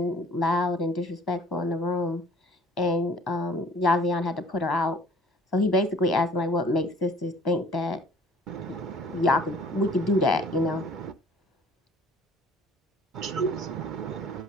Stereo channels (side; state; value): both; normal; correlation 0.53